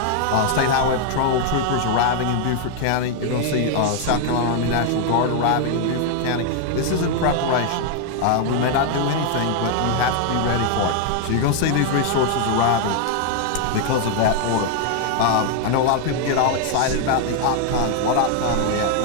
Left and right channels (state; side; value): different; both; correlation 0.00